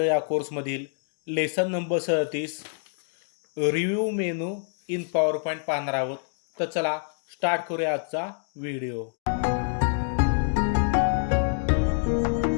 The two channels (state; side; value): silent; right; digital silence